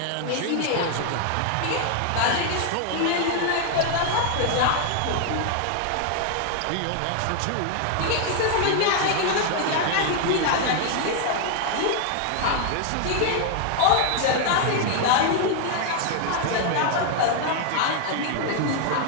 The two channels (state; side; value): different; both; correlation 0.00